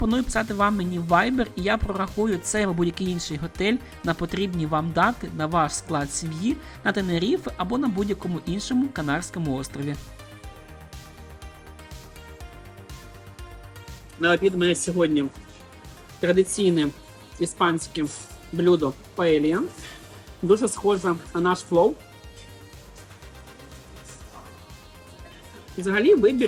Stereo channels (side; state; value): both; identical; correlation 1.00